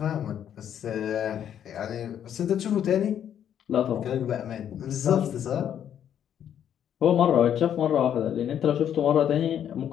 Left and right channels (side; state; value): right; quieter; 9.6 dB